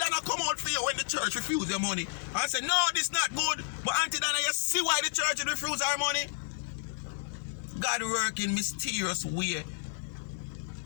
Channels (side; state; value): right; silent; digital silence